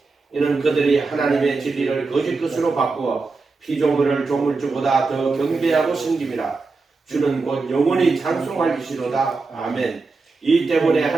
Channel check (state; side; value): quieter; left; 4.0 dB